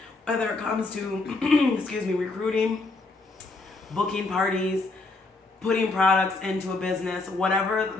whether it comes to recruiting, booking parties, putting products into a business, whatever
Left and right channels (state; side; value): quieter; right; 3.4 dB